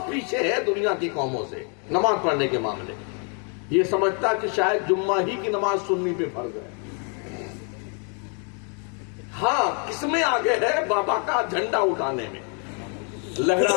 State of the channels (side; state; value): right; quieter; 39.3 dB